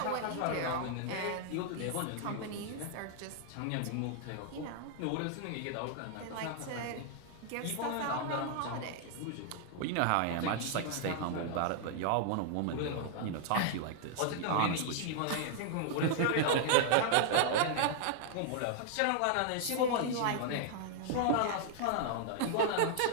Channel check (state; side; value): different; both; correlation -0.01